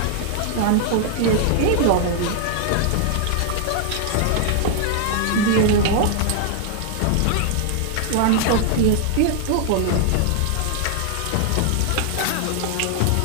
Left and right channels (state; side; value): different; both; correlation 0.00